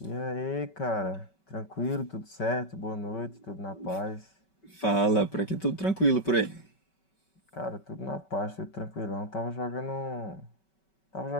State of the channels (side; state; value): right; late; 5.3 ms